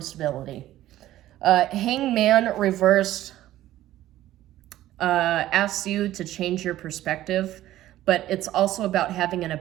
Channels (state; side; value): quieter; left; 14.2 dB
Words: stability. Hangman reversed asks you to change your perspective, but it's also about having an